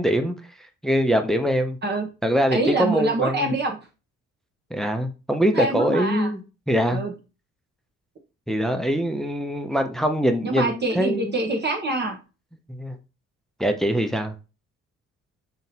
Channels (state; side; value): normal; both; correlation 0.67